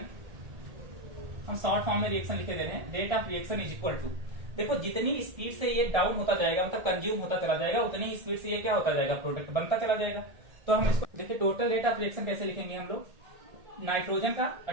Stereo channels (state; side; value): late; left; 1.8 ms